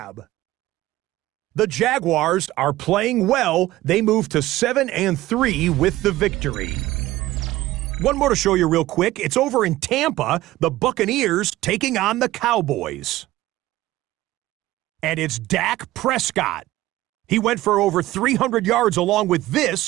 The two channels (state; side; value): quieter; left; 16.5 dB